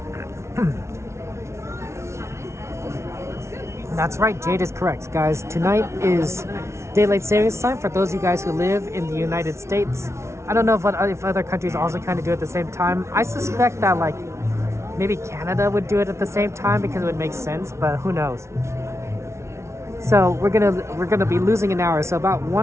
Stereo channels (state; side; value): late; left; 0.13 ms